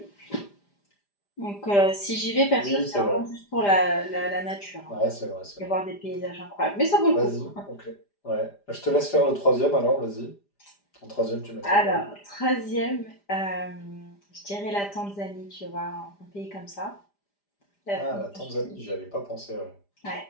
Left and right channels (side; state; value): right; late; 5.0 ms